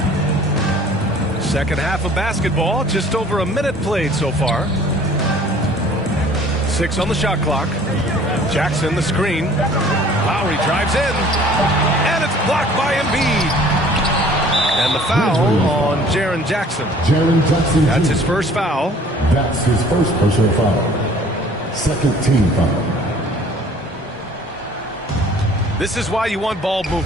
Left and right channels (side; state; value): both; normal; correlation 0.52